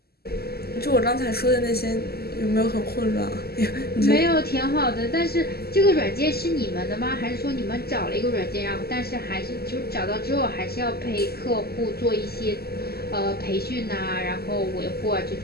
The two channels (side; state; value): right; late; 0.46 ms